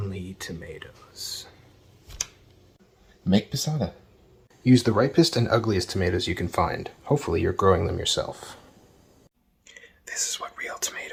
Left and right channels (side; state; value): both; identical; correlation 1.00